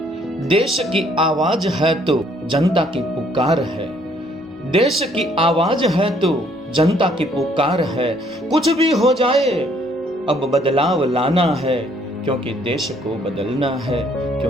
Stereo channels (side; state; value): both; normal; correlation 0.64